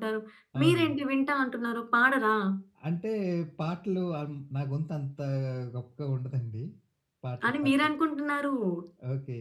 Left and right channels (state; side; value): identical; both; correlation 1.00